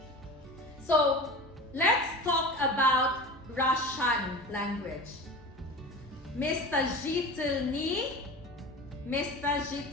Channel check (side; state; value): both; normal; correlation 0.33